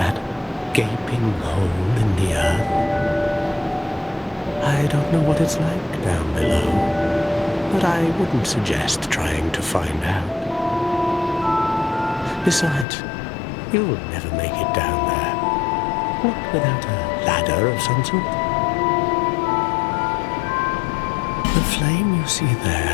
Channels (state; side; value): drops out; right; at 12.9 s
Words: gaping hole in the earth? I don't know what it's like down below, but I wouldn't suggest trying to find out. Besides, you'll never make it down there, not without a ladder of some sort. The flame you see